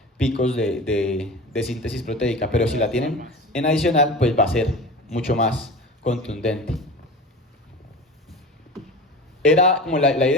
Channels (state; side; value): normal; both; correlation 0.33